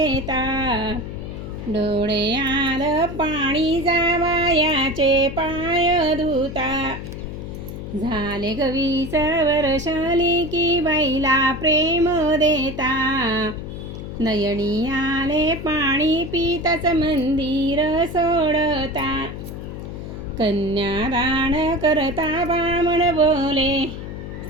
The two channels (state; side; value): noise; left; hum, 9 dB below the sound